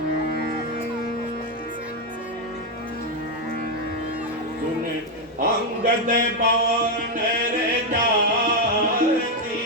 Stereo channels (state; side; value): normal; both; correlation 0.04